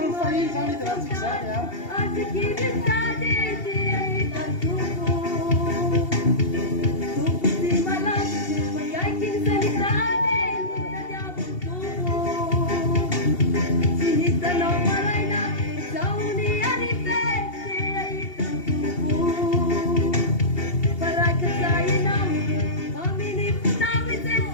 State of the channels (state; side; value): late; right; 2.8 ms